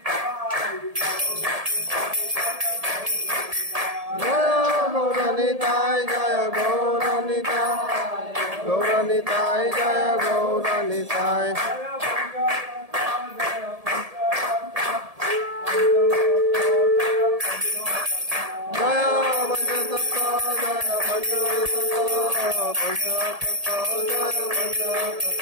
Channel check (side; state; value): left; late; 1.7 ms